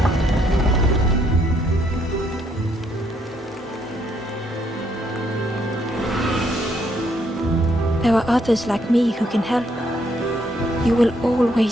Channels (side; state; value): both; normal; correlation 0.72